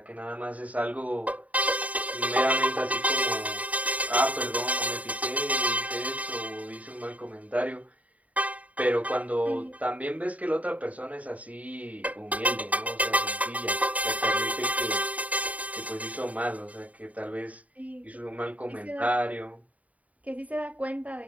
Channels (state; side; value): late; left; 0.070 ms